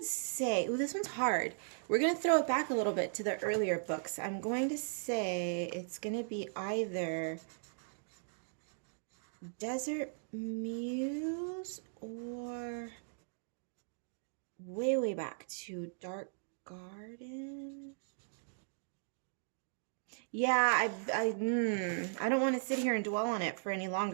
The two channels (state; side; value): silent; left; digital silence